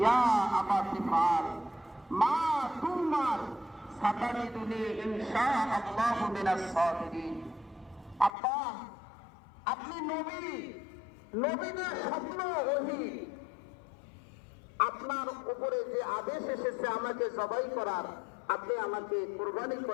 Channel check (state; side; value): drops out; right; at 8.3 s